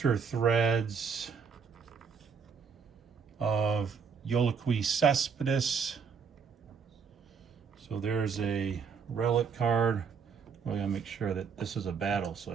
Threads of Yolakui Cespedes. So there's a relic card. Well, I gotta make sure that this is a battle, so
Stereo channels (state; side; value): quieter; left; 6.1 dB